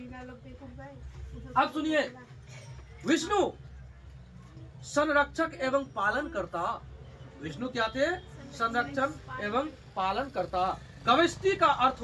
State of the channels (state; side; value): identical; both; correlation 1.00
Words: अब सुनिए, विष्णु संरक्षक एवं पालन करता। विष्णु क्या थे? संरक्षण एवं पालन करता। गविष्टि का अर्थ